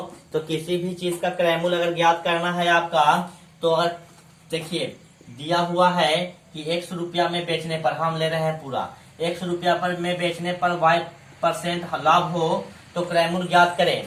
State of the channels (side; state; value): both; identical; correlation 1.00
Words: तो किसी भी चीज का क्रय मूल्य अगर ज्ञात करना है आपका, तो अगर देखिए दिया हुआ है कि 100 रुपया में बेचने पर, हम ले रहे हैं पूरा 100 रुपया पर में बेचने पर y% लाभ हो तो क्रय मूल्य ज्ञात